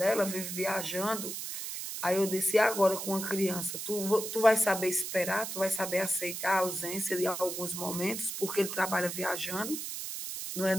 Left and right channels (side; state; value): right; noise; hiss, 6 dB below the sound